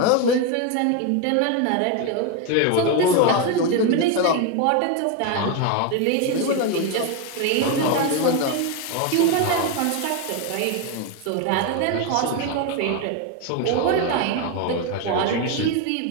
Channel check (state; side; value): different; both; correlation 0.02